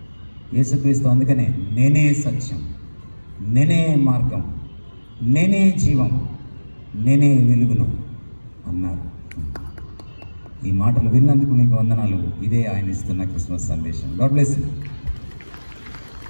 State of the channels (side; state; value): both; inverted; correlation -1.00